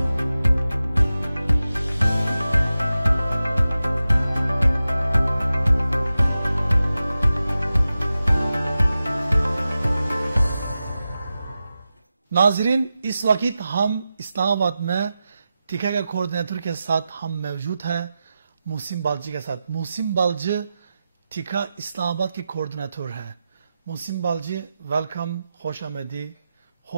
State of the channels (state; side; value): inverted; both; correlation -0.92